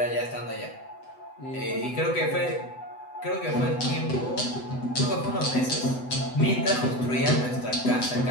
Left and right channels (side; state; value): right; late; 7.9 ms